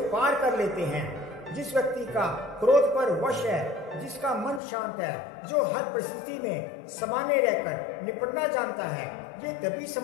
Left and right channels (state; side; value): drops out; right; at 4.6 s